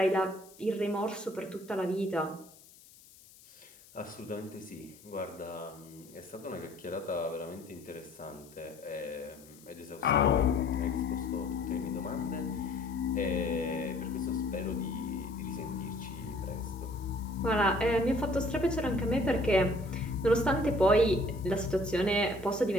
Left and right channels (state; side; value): noise; left; hiss, 23 dB below the sound